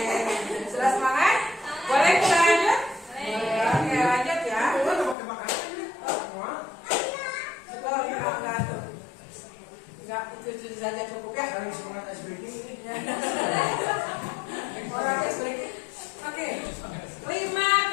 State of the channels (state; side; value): drops out; right; at 5.2 s